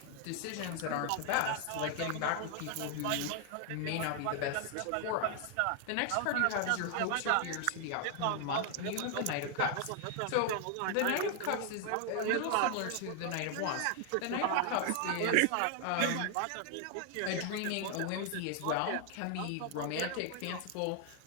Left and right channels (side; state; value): both; different; correlation 0.00